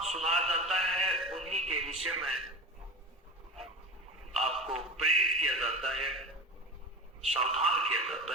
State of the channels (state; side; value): normal; both; correlation 0.29